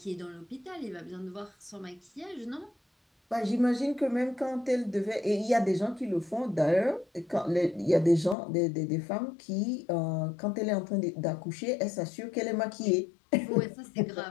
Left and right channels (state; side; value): drops out; right; at 8.3 s